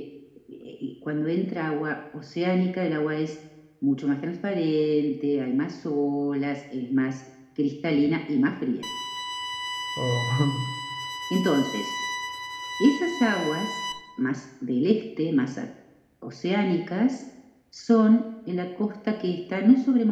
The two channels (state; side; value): identical; both; correlation 1.00